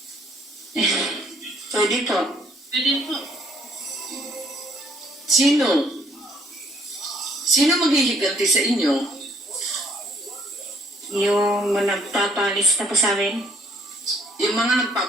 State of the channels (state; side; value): normal; both; correlation 0.64